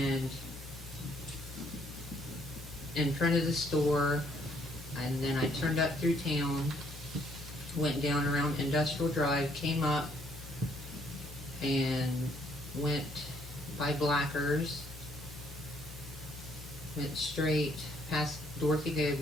in front of the store, and then I turned up through town, went down around Industrial Drive, came up and went by Blackers, went straight past Dorothy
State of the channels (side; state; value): both; normal; correlation 0.67